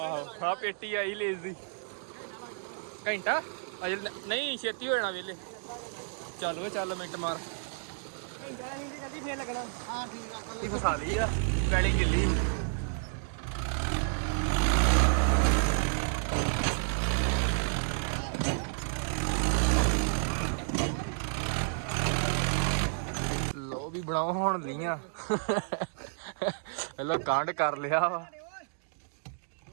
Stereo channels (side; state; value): left; silent; digital silence